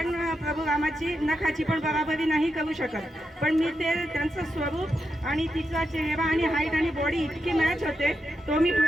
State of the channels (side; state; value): both; normal; correlation 0.85